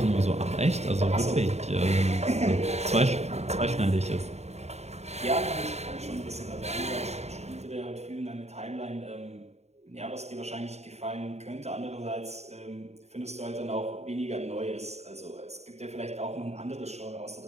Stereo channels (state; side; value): late; left; 0.32 ms